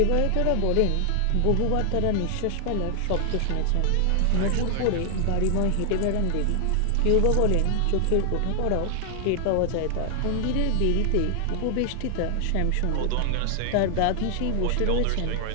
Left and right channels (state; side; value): different; both; correlation 0.00